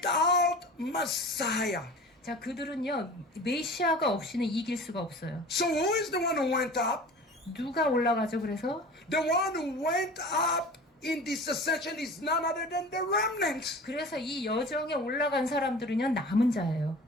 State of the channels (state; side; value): normal; both; correlation 0.39